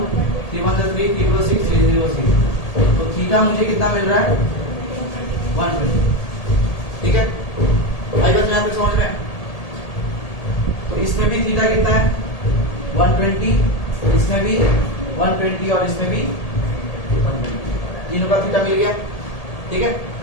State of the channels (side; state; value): right; late; 1.8 ms